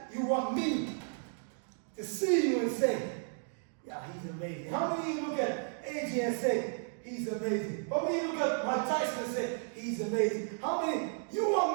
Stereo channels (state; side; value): silent; left; digital silence